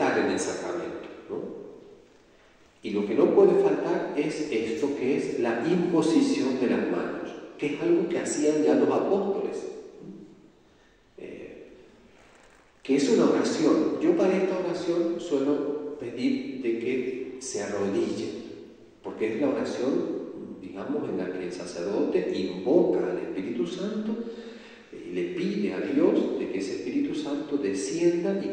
en el sacramento, ¿no? Y lo que no puede faltar es esto, que es la imposición de las manos, que es algo que hacían ya los apóstoles, que es una oración. Yo para esta oración suelo pedir de que se arrodillen, porque es la oración, digamos, en la que el sacerdote invoca al Espíritu Santo y le pide a Dios de que ese Espíritu Santo descienda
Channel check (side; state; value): both; identical; correlation 1.00